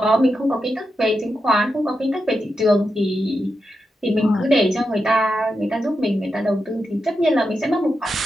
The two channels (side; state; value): both; normal; correlation 0.87